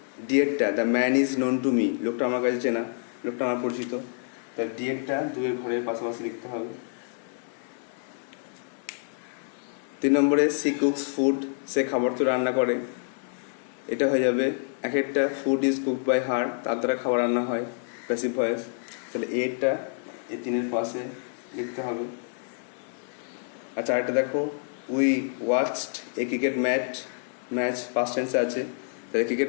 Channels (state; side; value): silent; right; digital silence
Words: ডিয়েরটা the man is known to me, লোকটা আমার কাছে চেনা, লোকটা আমার পরিচিত, তাহলে ডিয়েরটা দুয়ের ঘরের পাশাপাশি লিখতে হবে। 3 নম্বরে সি কুকস ফুড, সে খাবার তো রান্না করে, এটা হয়ে যাবে এক একটা food is cooked by her, তার দ্বারা খাবার রান্না হয়, প্যাসিভ ভয়েস, তাহলে এরটা এই 3-এর পাশে লিখতে হবে। আচ্ছা আরেকটা দেখো, we watched a cricket match first টেন্সে আছে, তাহলে